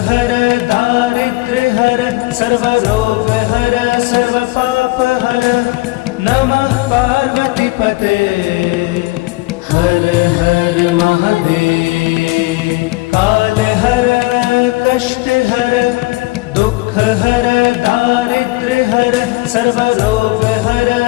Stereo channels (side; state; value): right; quieter; 22.1 dB